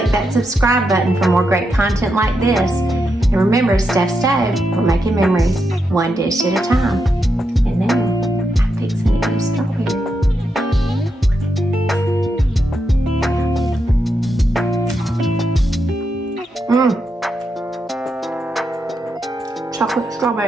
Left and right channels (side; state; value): both; normal; correlation 0.84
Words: that subscribe button for more great content like this. And remember, Steph Stove, we're making memories one dish at a time. And now, I'm fixing to eat a strawberry. Chocolate